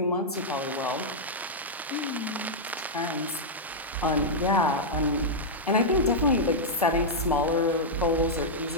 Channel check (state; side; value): normal; both; correlation -0.06